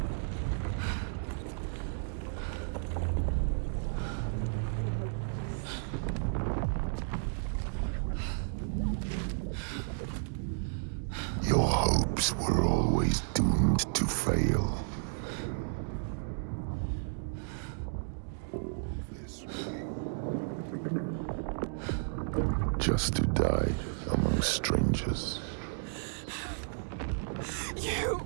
Your hopes were always doomed to fail. All this way. Just to die among strangers. You!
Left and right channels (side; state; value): left; silent; digital silence